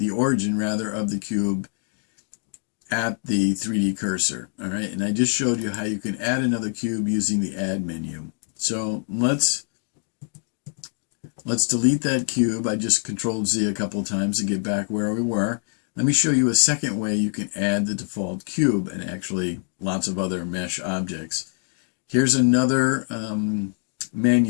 origin, rather, of the cube at the 3D cursor. All right, and I just showed you how you can add another cube using the Add menu. So let's delete that cube. I just Control-Z a couple of times to get back where we were. Let me show you a second way you can add the default cube, and actually lots of other mesh objects. Here's another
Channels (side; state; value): right; silent; 57 dB below the other